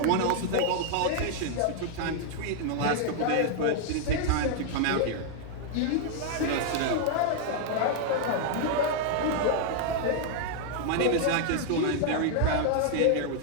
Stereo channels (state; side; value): different; both; correlation -0.01